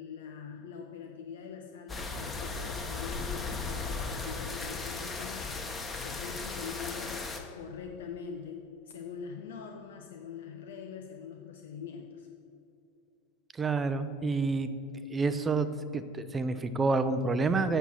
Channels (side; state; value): both; normal; correlation 0.58